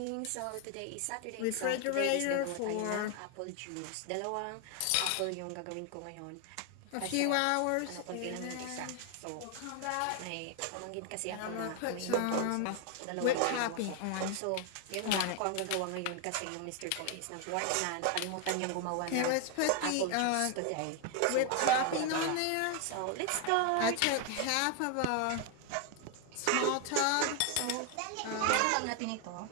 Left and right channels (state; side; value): different; both; correlation 0.01